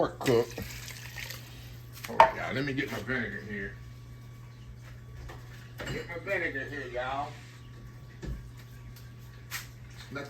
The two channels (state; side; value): identical; both; correlation 1.00